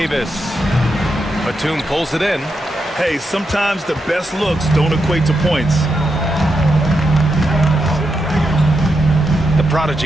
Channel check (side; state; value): both; normal; correlation 0.84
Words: Batum pulls it in. Hey, sometimes the best looks don't equate to points. The